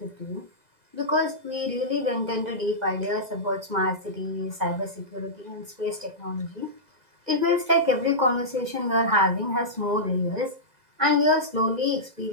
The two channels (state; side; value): late; left; 2.0 ms